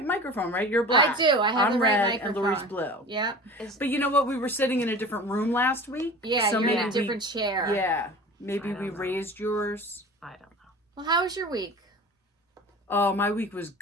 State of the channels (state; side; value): normal; both; correlation 0.38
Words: microphone, right? You're black. I do. I have I'm the right red microphone. and Lori's blue. Yep. But you know what? We were sitting in a different room last week. Yeah, so you're in maybe a different chair. Yeah. Maybe we raised yours. I don't know. Well, how was your week? Oh, my week was